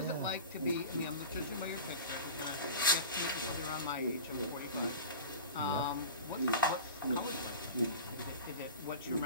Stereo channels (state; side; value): inverted; both; correlation -0.34